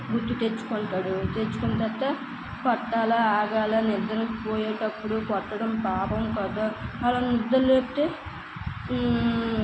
గుర్తు తెచ్చుకుంటాడు. తెచ్చుకున్న తర్వాత కొట్టాలా ఆగాల, నిద్ర పోయేటప్పుడు కొట్టడం పాపం కదా. అలా నిద్ర లేపితే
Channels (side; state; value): both; identical; correlation 1.00